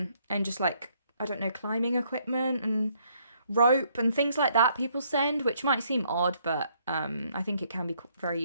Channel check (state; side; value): inverted; both; correlation -0.69